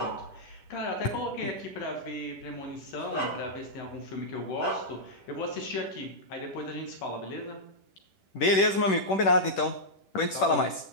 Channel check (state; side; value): late; right; 10 ms